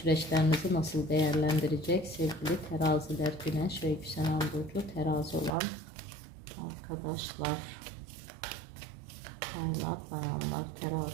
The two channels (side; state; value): left; drops out; at 5.5 s